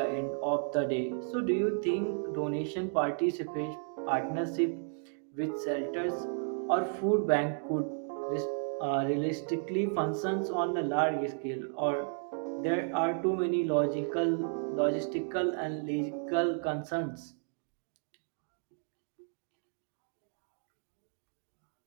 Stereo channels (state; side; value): silent; left; 56 dB below the other